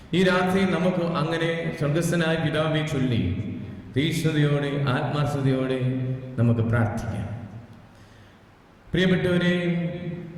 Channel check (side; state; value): both; identical; correlation 1.00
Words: ഈ രാത്രി നമുക്ക് അങ്ങനെ സ്വർഗസ്ഥനായ പിതാവെ ചൊല്ലി തീഷ്ണതയോടെ ആത്മാർത്ഥതയോടെ നമുക്ക് പ്രാർത്ഥിക്കാം. പ്രിയപ്പെട്ടവരെ,